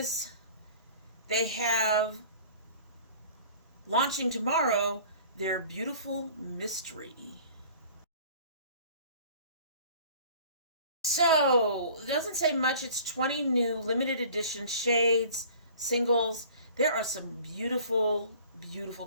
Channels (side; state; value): both; inverted; correlation -0.47